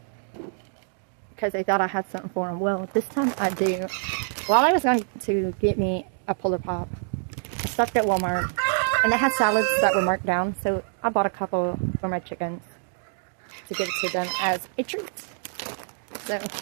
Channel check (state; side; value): silent; left; digital silence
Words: because they thought I had something for them. Well, this time I do. While I was going to get me a Polar Pop, I stopped at Walmart and they had salads that were marked down, so I bought a couple for my chickens to give it to them as a treat. So